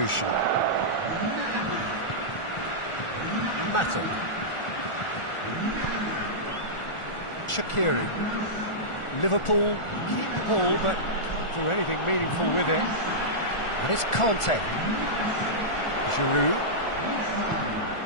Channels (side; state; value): right; late; 1.4 ms